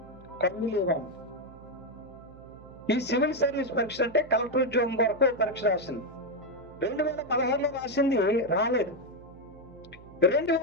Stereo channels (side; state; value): right; noise; hum, 20 dB below the sound